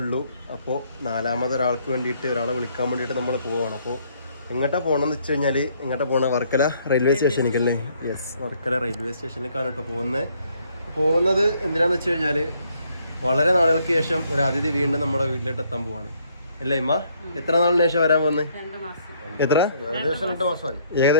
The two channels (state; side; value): inverted; both; correlation -0.67